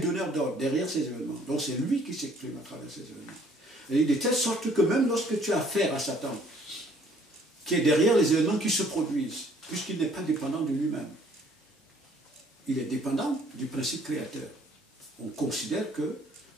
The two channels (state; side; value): normal; both; correlation 0.60